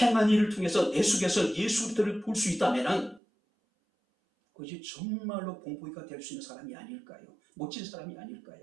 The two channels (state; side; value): drops out; left; at 3.2 s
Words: 일을 통해서 내 속에서 예수 그리스도를 볼 수 있다면 그것이 정말로 본보기가 될 수 있는 사람이 아닐까요? 멋진 사람이